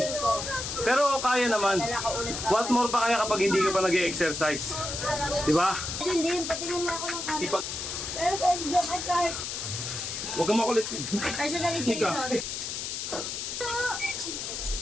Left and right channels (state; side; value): noise; left; hiss, 5 dB below the sound